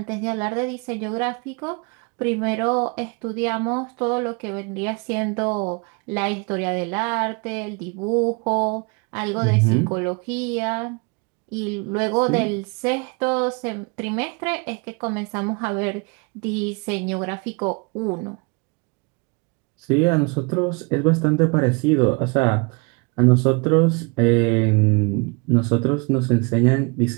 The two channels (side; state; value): left; quieter; 30.8 dB